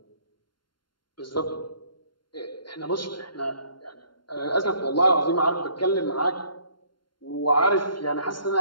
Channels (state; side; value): late; right; 0.72 ms